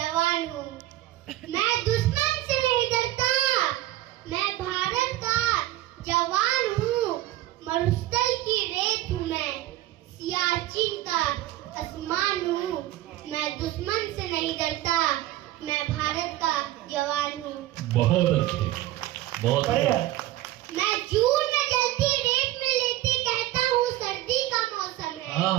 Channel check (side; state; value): left; quieter; 15.3 dB